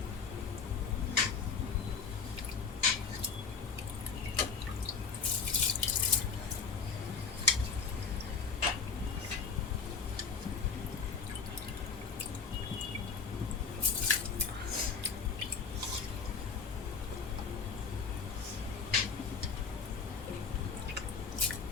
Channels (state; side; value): quieter; right; 5.8 dB